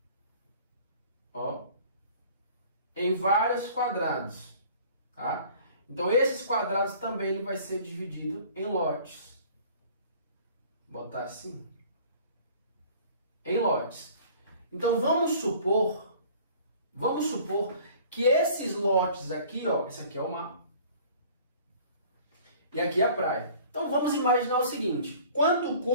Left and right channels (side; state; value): both; inverted; correlation -0.49